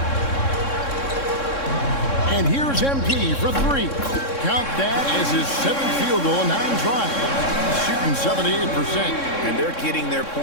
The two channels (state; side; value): late; right; 3.6 ms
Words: And here's MP for 3. Count that as his 7th field goal in 9 tries. Shooting 78%. And they're getting their